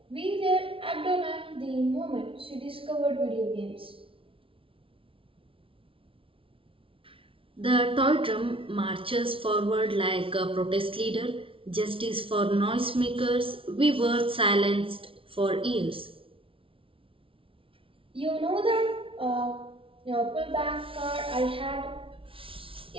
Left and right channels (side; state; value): left; late; 0.26 ms